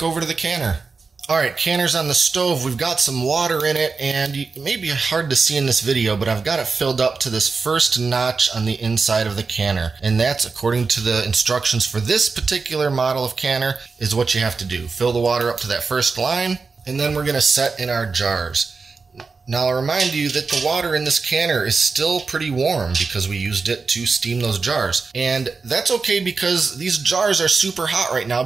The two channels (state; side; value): quieter; left; 4.6 dB